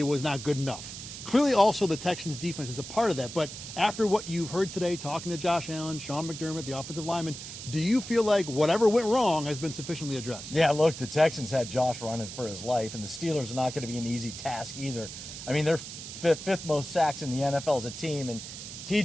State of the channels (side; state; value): right; noise; hiss, 10 dB below the sound